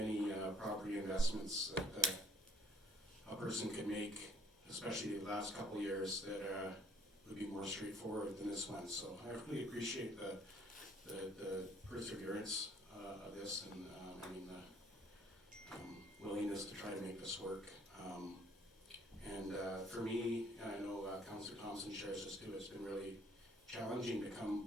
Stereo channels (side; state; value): both; normal; correlation 0.61